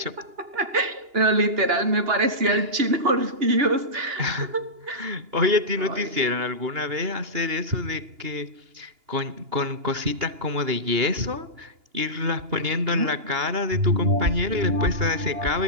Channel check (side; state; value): left; late; 2.8 ms